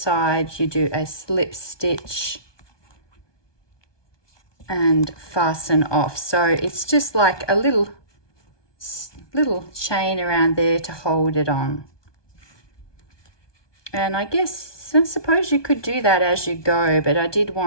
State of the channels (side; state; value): right; late; 1.2 ms